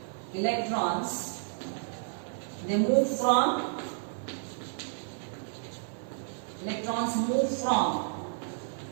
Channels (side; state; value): left; silent; 57 dB below the other